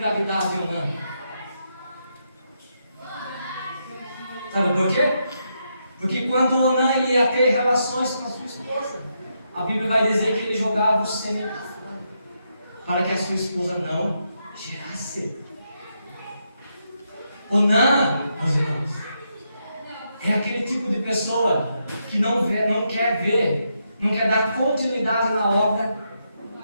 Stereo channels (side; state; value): both; inverted; correlation -0.81